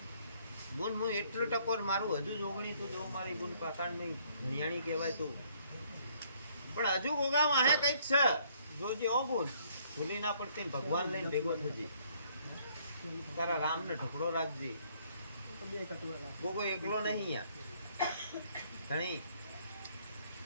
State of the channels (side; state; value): both; inverted; correlation -0.64